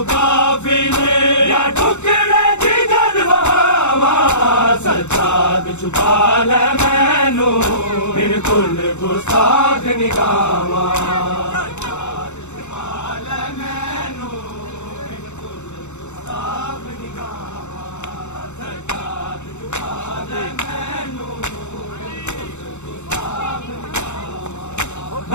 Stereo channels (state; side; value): late; right; 0.83 ms